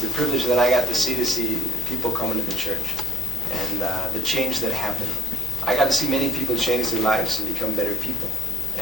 the privilege that I got to see people coming to the church and the change that happened. I got to see many people change their lives and become better people.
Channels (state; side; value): normal; both; correlation 0.56